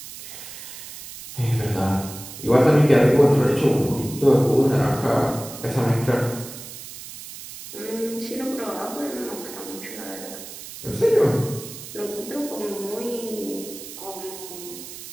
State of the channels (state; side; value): noise; right; hiss, 13 dB below the sound